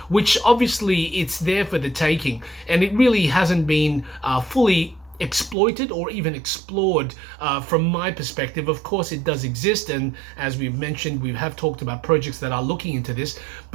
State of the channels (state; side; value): drops out; left; at 5.6 s